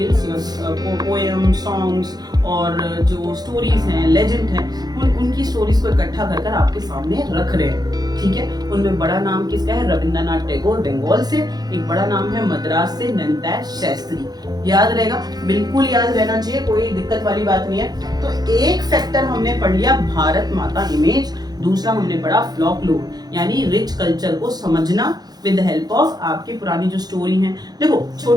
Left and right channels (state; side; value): late; left; 0.19 ms